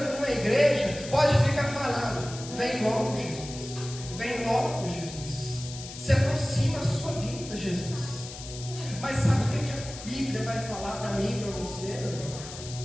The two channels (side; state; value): left; noise; hiss, 12 dB below the sound